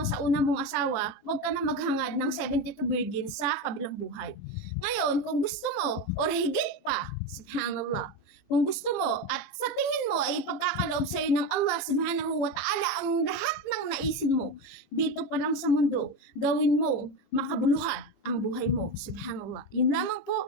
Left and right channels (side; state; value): right; late; 17 ms